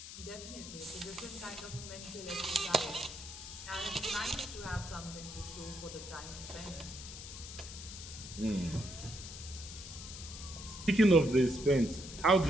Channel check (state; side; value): noise; left; hiss, 11 dB below the sound